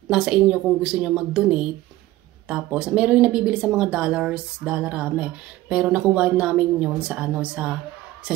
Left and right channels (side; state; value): left; quieter; 16.5 dB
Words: Nasa inyo kung gusto nyo mag-donate. Tapos, meron yung nabibili sa mga dollarame. Pero nakuha namin yun sa sa